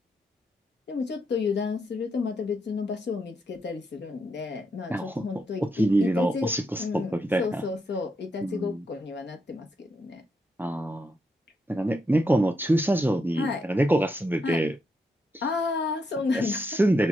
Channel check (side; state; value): both; normal; correlation 0.80